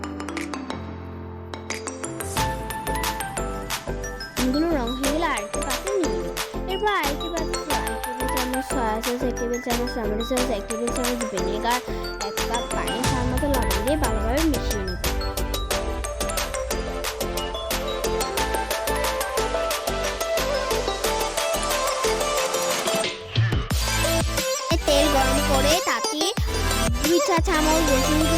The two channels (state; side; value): identical; both; correlation 1.00